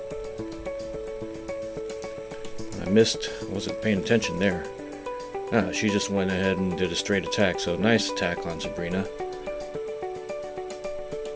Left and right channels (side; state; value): both; identical; correlation 1.00